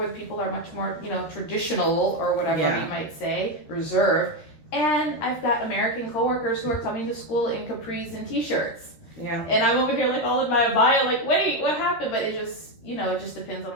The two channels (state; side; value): late; right; 13 ms